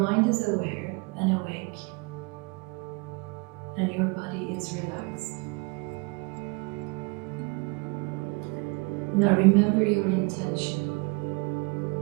is aware and awake, and your body is relaxed. Now remember your intention.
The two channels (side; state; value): left; quieter; 28.5 dB